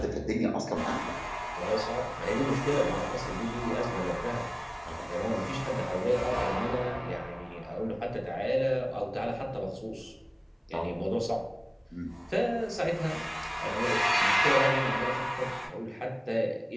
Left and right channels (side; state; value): both; identical; correlation 1.00